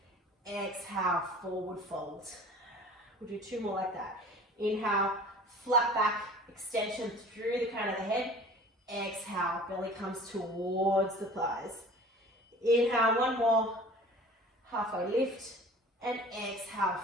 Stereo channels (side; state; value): both; normal; correlation 0.44